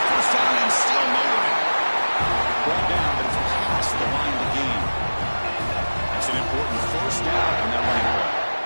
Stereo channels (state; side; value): inverted; both; correlation -1.00